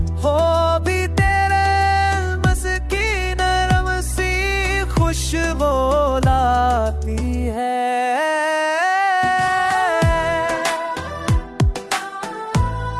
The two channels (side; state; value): both; identical; correlation 1.00